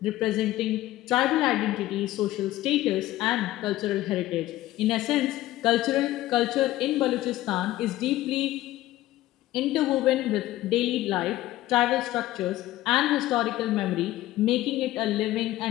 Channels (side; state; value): right; quieter; 15.7 dB